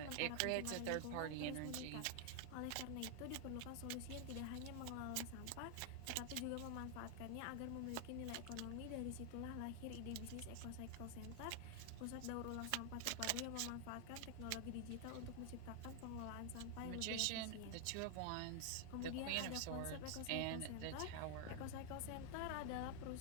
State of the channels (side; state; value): both; different; correlation 0.00